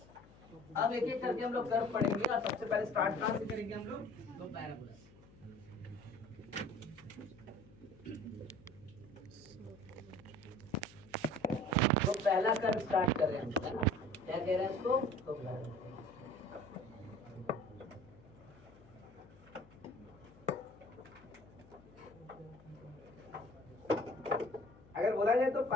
अब एक एक करके हम लोग कर्व पढ़ेंगे, और सबसे पहले स्टार्ट कहां से करेंगे हम लोग, तो पैराबोला। तो पहला कर्व स्टार्ट कर रहे हैं, है ना, क्या कह रहे हैं इसको, तो चाहे तो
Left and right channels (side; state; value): left; noise; hum, 23 dB below the sound